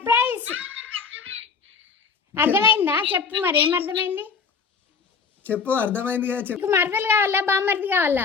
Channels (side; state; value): right; quieter; 5.5 dB